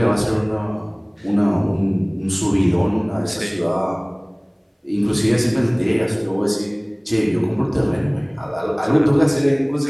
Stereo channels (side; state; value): both; identical; correlation 1.00